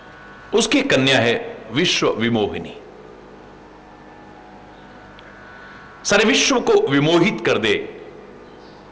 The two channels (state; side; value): identical; both; correlation 1.00